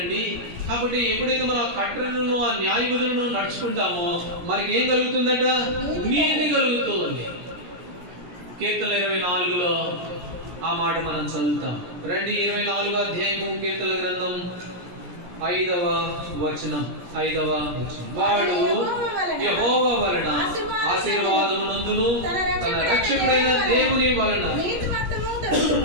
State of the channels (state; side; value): late; left; 17 ms